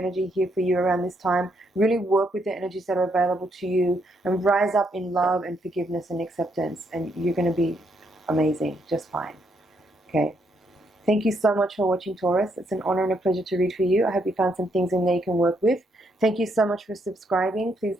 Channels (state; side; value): normal; both; correlation 0.75